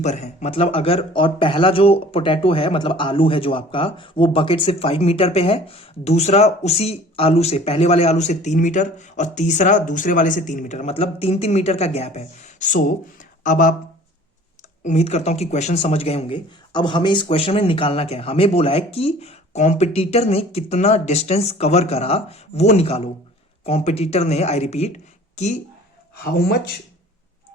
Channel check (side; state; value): both; normal; correlation 0.48